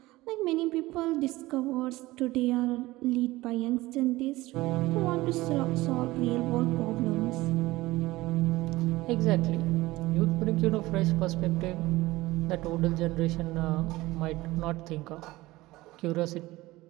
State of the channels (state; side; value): quieter; left; 19.0 dB